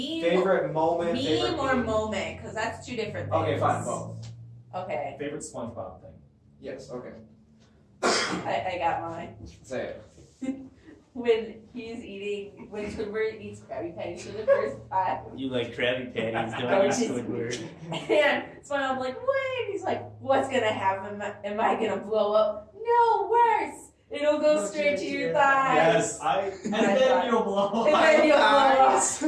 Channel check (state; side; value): identical; both; correlation 1.00